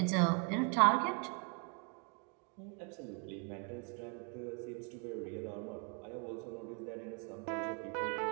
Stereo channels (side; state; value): left; quieter; 37.3 dB